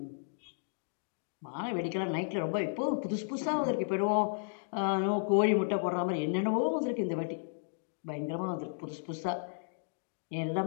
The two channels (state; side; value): silent; right; digital silence